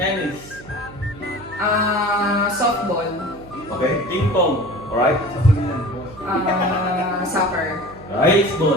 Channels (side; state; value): right; noise; hum, 19 dB below the sound